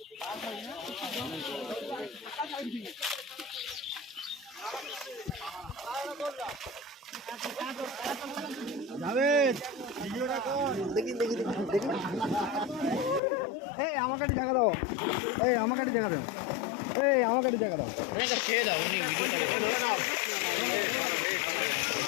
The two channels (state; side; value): drops out; right; at 13.2 s